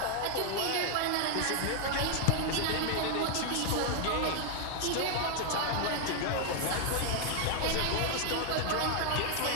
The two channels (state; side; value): different; both; correlation 0.00